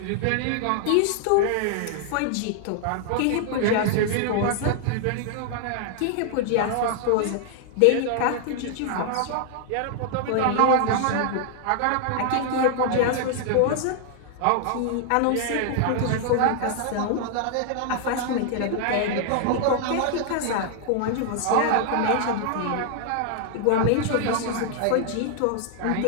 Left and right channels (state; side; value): different; both; correlation 0.00